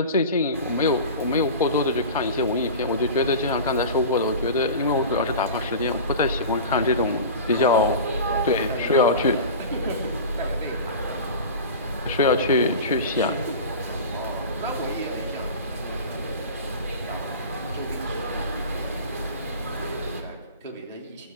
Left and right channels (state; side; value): inverted; both; correlation -0.33